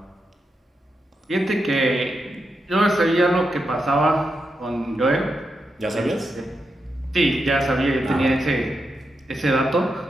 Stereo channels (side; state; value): both; normal; correlation 0.86